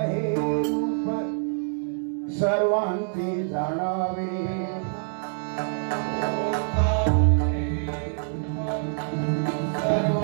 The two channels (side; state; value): left; silent; digital silence